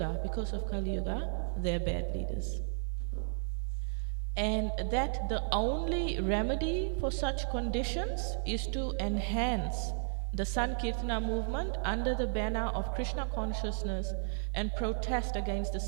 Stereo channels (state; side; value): silent; left; digital silence